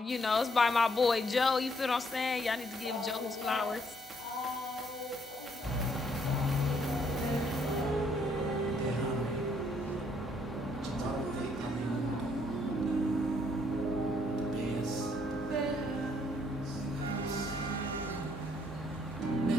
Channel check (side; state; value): both; normal; correlation 0.68